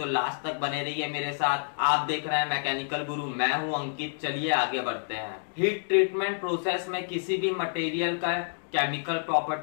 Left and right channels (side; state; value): right; silent; digital silence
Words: लास्ट तक बने रहिए मेरे साथ। आप देख रहे हैं मैकेनिकल गुरु, मैं हूं अंकित। चलिए आगे बढ़ते हैं। हीट ट्रीटमेंट प्रोसेस में किसी भी मटेरियल का केमिकल